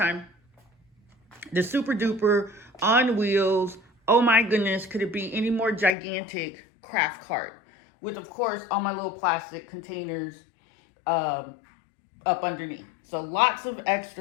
The super duper on wheels. Oh my goodness, could it be any more gigantic craft cart? With, of course, all my little plastic containers up underneath. So lots of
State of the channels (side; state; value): right; drops out; at 6.0 s